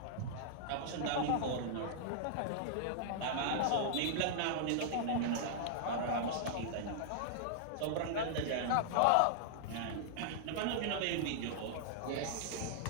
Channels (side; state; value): both; different; correlation -0.01